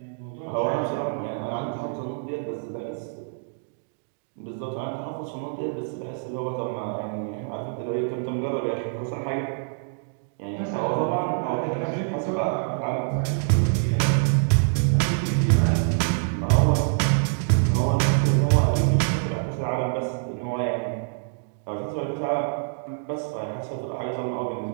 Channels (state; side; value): silent; left; digital silence